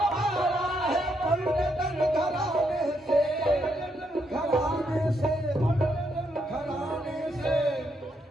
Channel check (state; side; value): normal; both; correlation 0.77